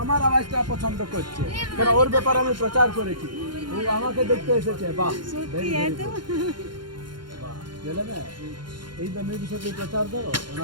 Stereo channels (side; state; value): left; late; 0.72 ms